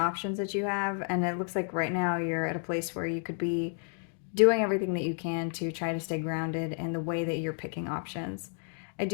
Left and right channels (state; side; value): silent; right; 57 dB below the other